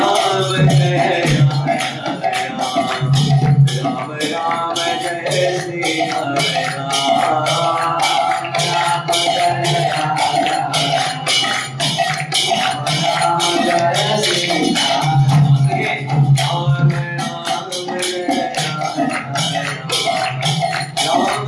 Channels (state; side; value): identical; both; correlation 1.00